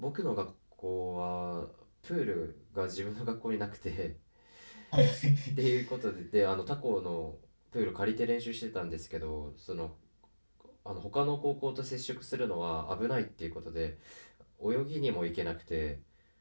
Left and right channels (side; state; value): both; inverted; correlation -1.00